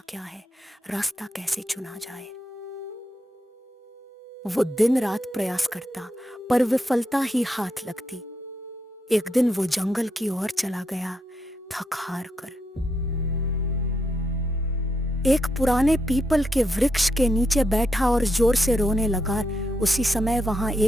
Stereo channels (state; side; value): normal; both; correlation 0.81